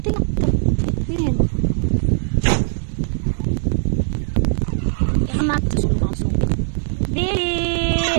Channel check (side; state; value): left; silent; digital silence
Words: tinakto. Diyan. Yan mat. Susulong ako sa nungkit. Di!